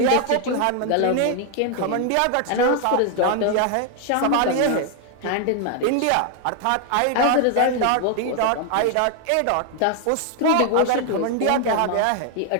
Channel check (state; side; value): different; both; correlation 0.00